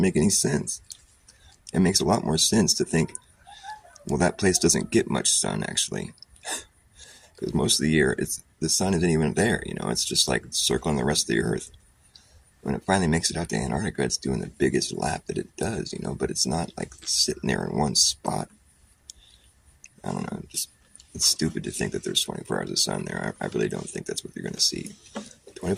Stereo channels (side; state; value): both; identical; correlation 1.00